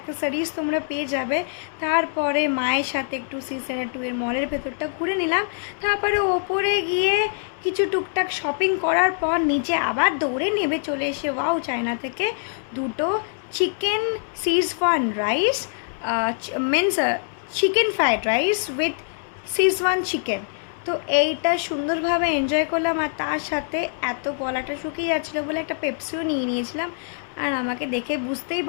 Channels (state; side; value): silent; right; 63 dB below the other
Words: তোমরা পেয়ে যাবে। তারপরে মায়ের সাথে একটু সি-সেন্ট এর মলের ভেতরটা ঘুরে নিলাম। তারপরে ওপরে গিয়ে কিছু টুকটাক শপিং করার পর নিচে আবার দৌড়ে নেমে চলে এসে ওয়াও চায়না থেকে দুটো chicken Schezwan rice, means chicken fried rice with Schezwan chicken. তো এইটা সুন্দরভাবে এনজয় করলাম। আর তার সাথে এত গলাটা শুকিয়ে যাচ্ছিলো বলে একটা পেপসিও নিয়ে নিয়েছিলাম। আর আমাকে দেখে বুঝতেই